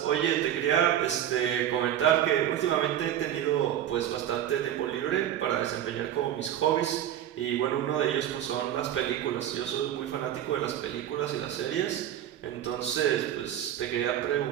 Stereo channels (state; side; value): quieter; left; 11.1 dB